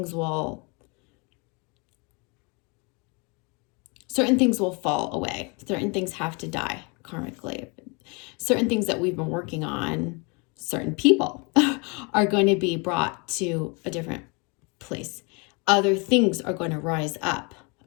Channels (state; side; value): quieter; right; 30.7 dB